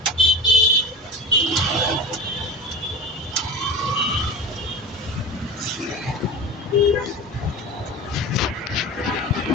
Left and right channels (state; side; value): normal; both; correlation 0.31